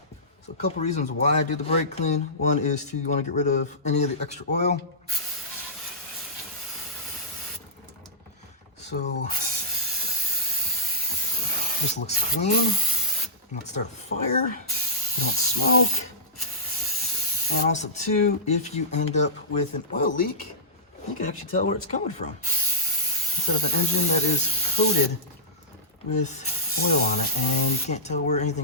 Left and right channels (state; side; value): normal; both; correlation -0.16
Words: so a couple reasons why I do the brake clean. One is you wanna get rid of any of the extra oil. So this looks clean. You don't start a fire, you don't smoke. And also too, if you end up with an oil leak, you can actually tell where it's coming from. Instead of an engine that is coated with oil on it and you can't tell where